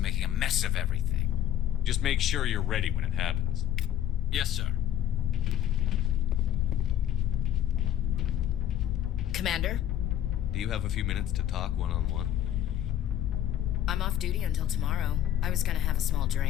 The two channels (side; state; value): right; quieter; 11.1 dB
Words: a mess of everything. Just make sure you're ready when it happens. Yes, sir. Commander? Do you have a few minutes to talk one-on-one? I'm off duty until tomorrow. I was gonna have a small